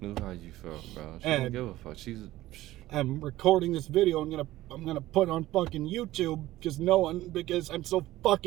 knew how you felt, bro. She didn't give a fuck. I'm recording this video. I'm gonna put on fucking YouTube because I'm so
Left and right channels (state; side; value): quieter; left; 16.0 dB